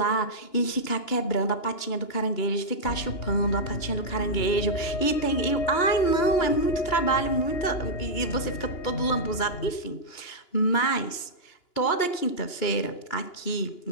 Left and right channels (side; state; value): right; late; 2.9 ms